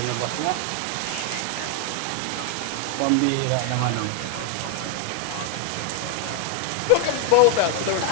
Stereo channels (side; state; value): both; different; correlation 0.01